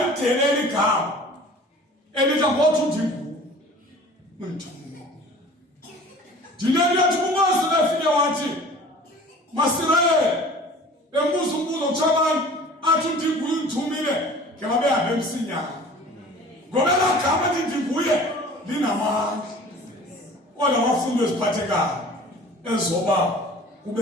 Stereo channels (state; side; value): normal; both; correlation 0.45